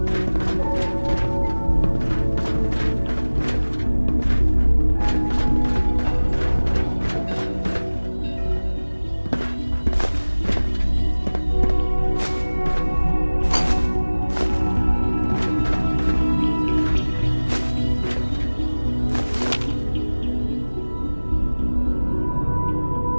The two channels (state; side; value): inverted; both; correlation -1.00